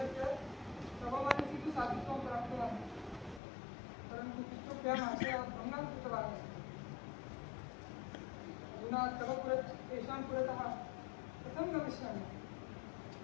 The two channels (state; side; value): drops out; right; at 3.4 s